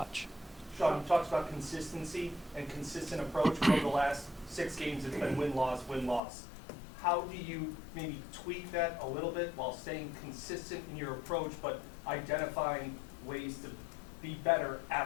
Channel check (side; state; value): right; drops out; at 6.2 s